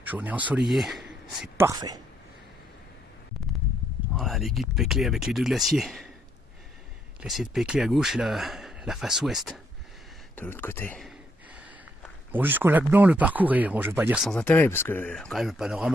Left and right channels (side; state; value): both; normal; correlation 0.74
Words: Journée ensoleillée, c'est parfait. Voilà l'écueil de Peclet avec les deux glaciers. Le glacier de Peclet à gauche et la face ouest de l'autre côté. Bon, jusqu'au lac Blanc, le parcours est, bon, je ne vais pas dire sans intérêt, parce que quand même le